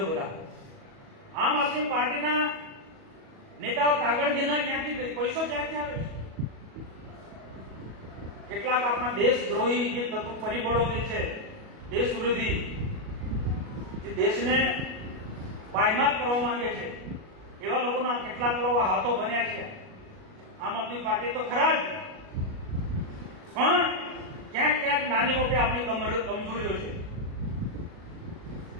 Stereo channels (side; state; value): left; late; 37 ms